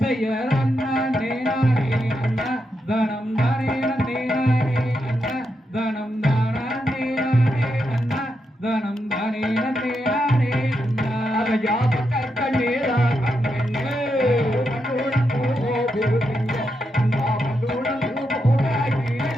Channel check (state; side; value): normal; both; correlation 0.84